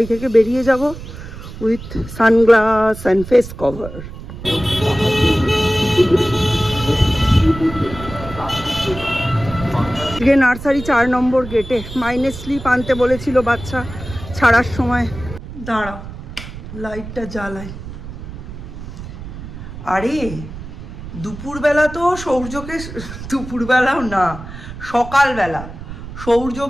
থেকে বেরিয়ে যাব with sunglass and face cover. আজকে নার্সারি 4 নম্বর গেটে মাইনে স্লিপ আনতে বলেছিল বাচ্চা ছাড়ার সময়। দাঁড়াও, লাইটটা জ্বালাই। আরে দুপুরবেলা তো সৌর্যকে, দুপুরবেলাও না, সকালবেলা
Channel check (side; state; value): right; noise; rumble, 12 dB below the sound